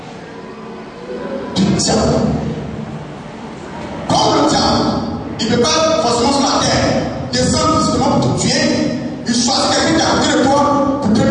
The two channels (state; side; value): identical; both; correlation 1.00